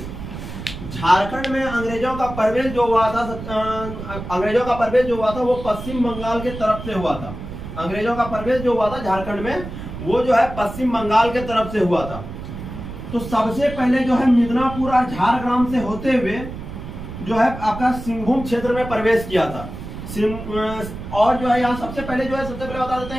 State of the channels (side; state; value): right; noise; rumble, 10 dB below the sound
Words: झारखंड में अंग्रेजों का प्रवेश जो हुआ था अंग्रेजों का प्रवेश जो हुआ था वो पश्चिम बंगाल के तरफ से हुआ था। अंग्रेजों का प्रवेश जो हुआ था झारखंड में वो जो है पश्चिम बंगाल के तरफ से हुआ था। तो सबसे पहले जो है मिदनापुर और झारग्राम से होते हुए जो है आपका सिंहभूम क्षेत्र में प्रवेश किया था। और जो है यहाँ सबसे पहले बता देते